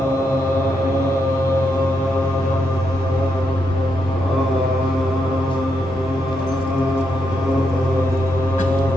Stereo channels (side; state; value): both; normal; correlation 0.81